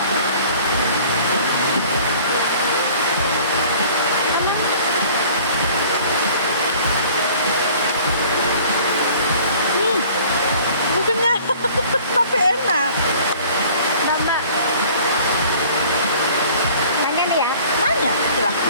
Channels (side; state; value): both; inverted; correlation -0.50